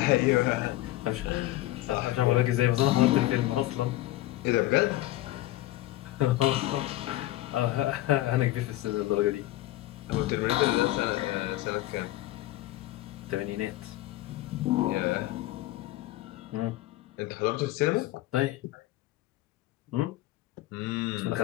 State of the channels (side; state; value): right; quieter; 16.3 dB